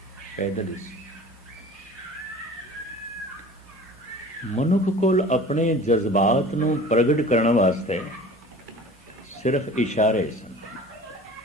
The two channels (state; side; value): normal; both; correlation 0.42